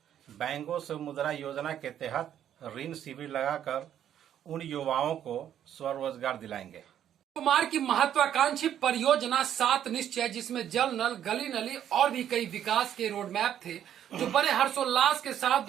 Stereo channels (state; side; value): quieter; left; 10.3 dB